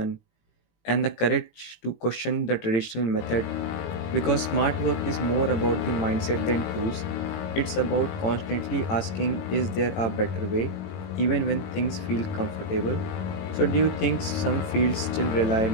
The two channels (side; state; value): right; late; 18 ms